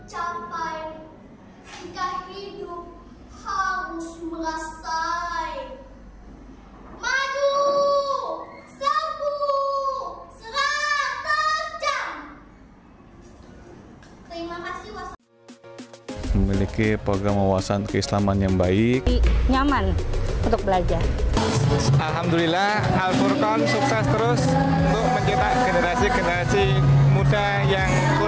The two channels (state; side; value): identical; both; correlation 1.00